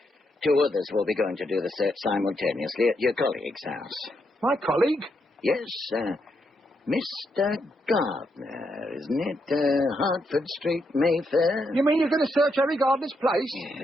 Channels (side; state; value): both; normal; correlation 0.80